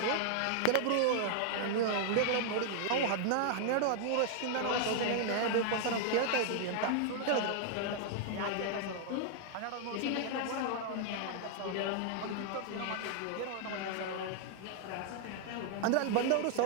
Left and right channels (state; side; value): different; both; correlation 0.00